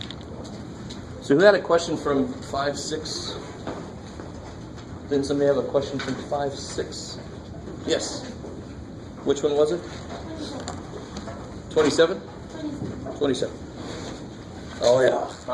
So who had a question from 5-6? Didn't somebody have a question from 5-6? Yes. Which one was it? 27? 27. Oh yeah. All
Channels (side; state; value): both; identical; correlation 1.00